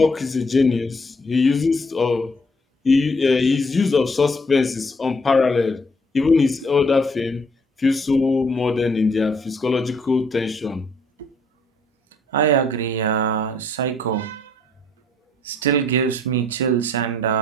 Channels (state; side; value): normal; both; correlation 0.65